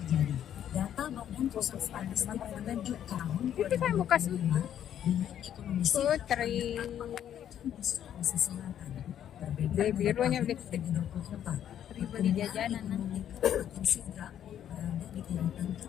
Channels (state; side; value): quieter; right; 10.2 dB